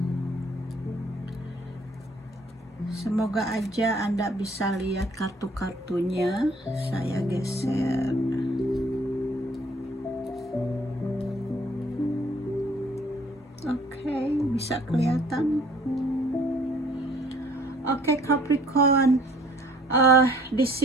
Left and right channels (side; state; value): both; normal; correlation 0.57